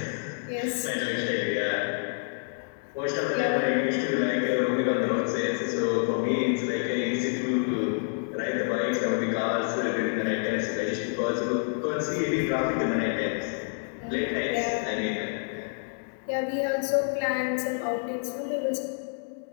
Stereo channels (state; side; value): silent; right; 59 dB below the other